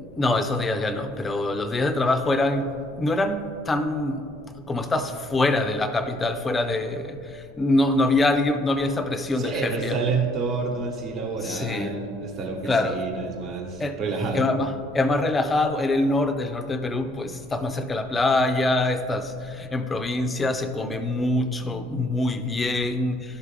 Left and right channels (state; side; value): noise; left; rumble, 23 dB below the sound